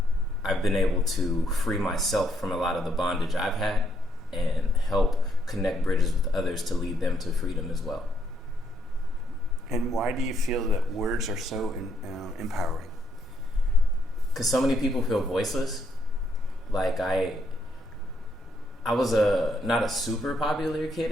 been able to free myself from a lot of the bondage I've had and help connect bridges with others to lead them to freedom as well. And why do you feel that words are so empowering? Because so many people feel voiceless. Like I was not a super popular kid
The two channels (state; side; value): normal; both; correlation 0.72